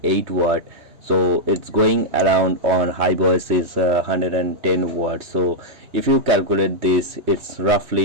watt, so it's going around on Hiveos is 110 watt. So if you calculate this, it's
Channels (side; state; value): left; late; 3.1 ms